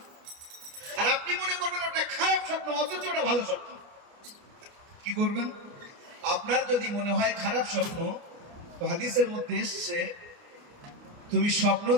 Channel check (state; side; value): late; left; 29 ms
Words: আর আপনি মনে করবেন ওটা খারাপ স্বপ্ন, অথচ ওটা ভালো স্বপ্ন। কি করবেন? আপনার যদি মনে হয় খারাপ স্বপ্ন, তো হাদিসের মধ্যে এসছে, তুমি স্বপ্ন